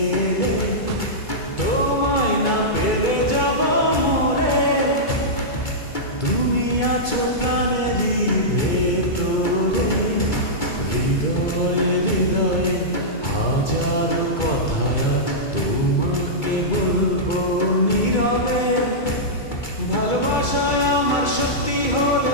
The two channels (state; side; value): late; right; 2.3 ms